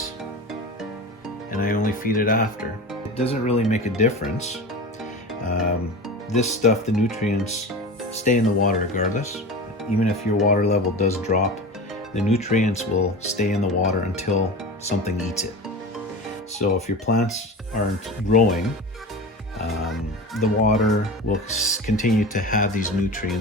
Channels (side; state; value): both; normal; correlation 0.30